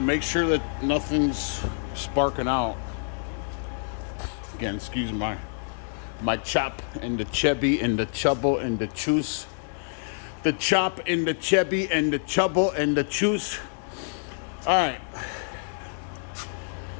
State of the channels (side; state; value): right; silent; 60 dB below the other